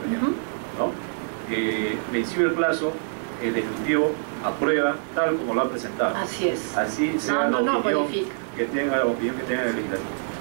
ejemplo, ¿no? Vencido el plazo, el Ejecutivo aprueba tal como lo ha presentado. Así es. Así sea la opinión que tenga el Legislativo,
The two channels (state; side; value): silent; left; 62 dB below the other